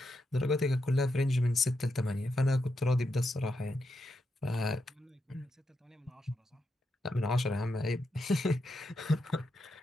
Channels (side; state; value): both; normal; correlation 0.84